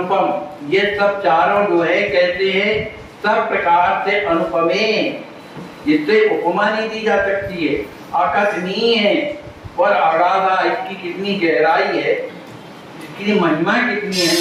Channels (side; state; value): both; identical; correlation 1.00